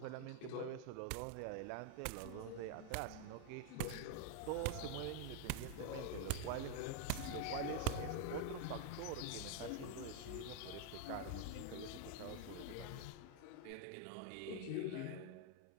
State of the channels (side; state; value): both; different; correlation 0.01